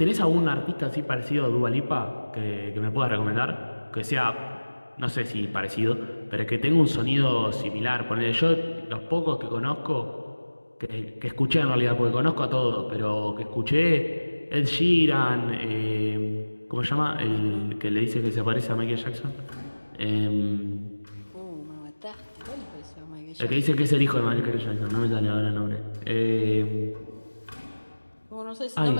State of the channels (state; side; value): inverted; both; correlation -1.00